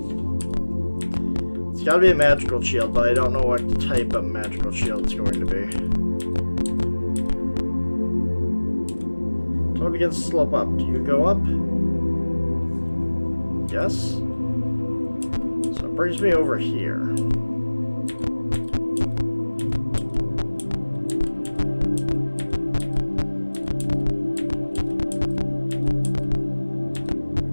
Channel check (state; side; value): inverted; both; correlation -1.00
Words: It's gotta be a magical shield, but I don't know what type of magical shield it's going to be. Total it begins to slope up. Do you go up? Yes. So it brings me over here.